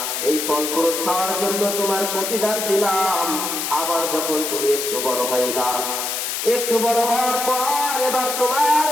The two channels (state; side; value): noise; left; hiss, 3 dB below the sound